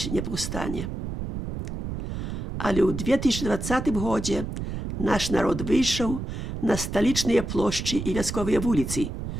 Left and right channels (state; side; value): noise; right; rumble, 5 dB below the sound